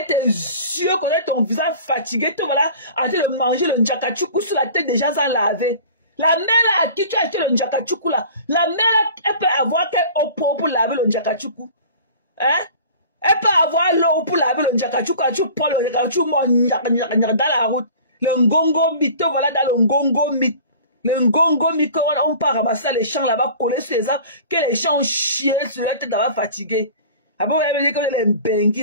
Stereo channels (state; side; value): inverted; both; correlation -0.43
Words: tes yeux, connaître ton visage fatigué, te voilà en train de manger le njakachuku sur la tête des gens sans laver. La mère à qui tu as acheté le njakachuku là, la mère elle peut avoir quelle eau pour laver le njakachuku. Hein? Elle peut avoir l'eau pour laver le njakachuku, tu prends le njakachuku dans la route. Le ngongo mit, te voilà dans le ngongo mit. Le ngongo mit, on part ramasser les champs là-bas, coller sur les arbres, que les champs ont chié sur la tête là-bas fatigué. Après, vous avez dit que les